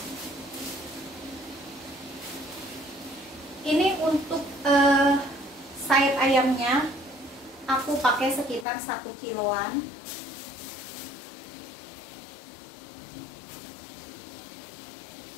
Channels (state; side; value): drops out; right; at 8.7 s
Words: Ini untuk sayap ayamnya aku pakai sekitar 1 kiloan.